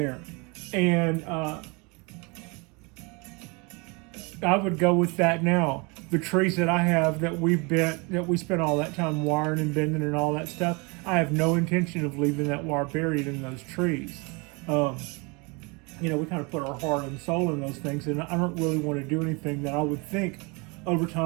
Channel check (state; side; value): quieter; left; 29.3 dB